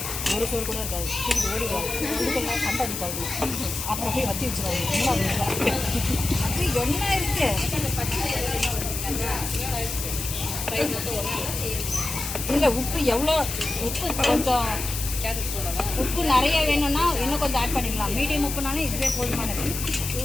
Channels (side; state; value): left; noise; hiss, 5 dB below the sound